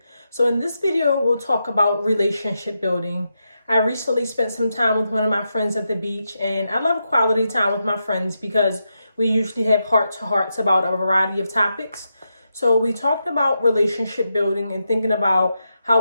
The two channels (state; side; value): inverted; both; correlation -0.86